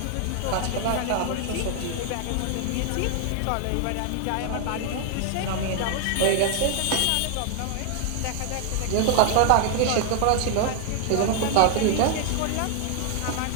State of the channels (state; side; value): different; both; correlation 0.00